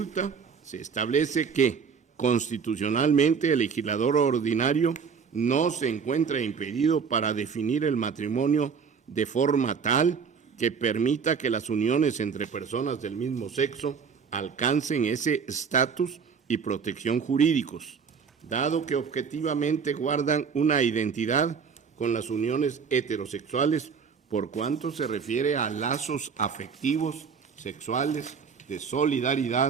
se establece que, constitucionalmente, el legislador ordinario no se encuentra impedido para definir el matrimonio de forma tal que permita que las uniones entre personas del mismo sexo alcancen ese estatus y protección jurídicos, dado que objetivamente guardan una identidad con las uniones heterosexuales por cuanto se refiere a lazos afectivos, sexuales, de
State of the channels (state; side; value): quieter; left; 6.1 dB